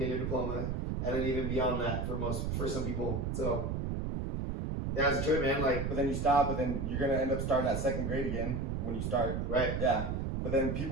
your diploma. And then even beyond that for some people. So yeah, it's a trip, man. Like, but then you stop, but then you're going to end up starting at 2nd grade again when you start. Right. Yeah. But then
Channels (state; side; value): noise; right; rumble, 1 dB below the sound